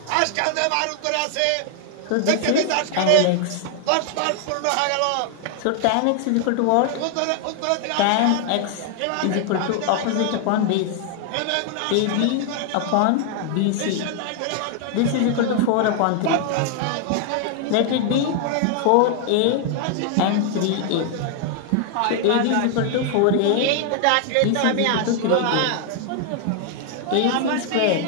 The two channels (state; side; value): different; both; correlation 0.00